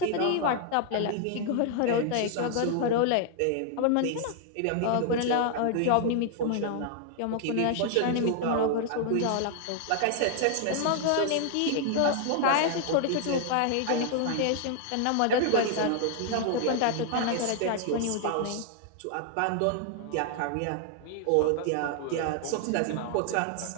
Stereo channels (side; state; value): both; different; correlation 0.00